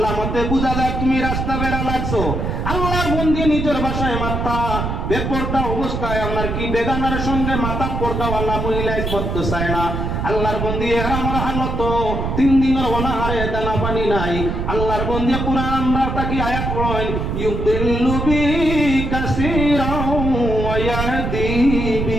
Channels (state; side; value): noise; right; rumble, 2 dB below the sound